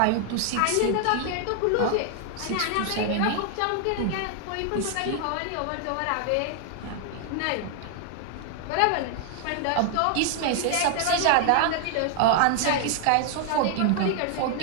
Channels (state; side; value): different; both; correlation 0.00